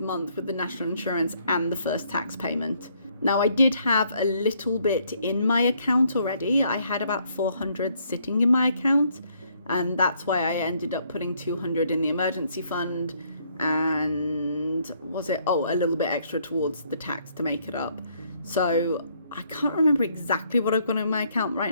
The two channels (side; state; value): both; inverted; correlation -0.68